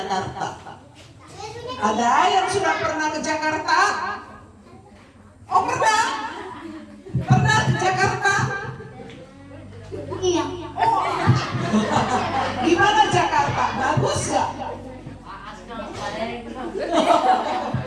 Ada yang sudah pernah ke Jakarta? Oh, pernah? Pernah ke Jakarta? Iya. Oh. Gimana Jakarta? Bagus gak?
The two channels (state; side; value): identical; both; correlation 1.00